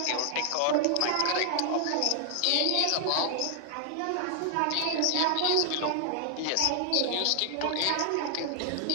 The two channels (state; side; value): different; both; correlation 0.00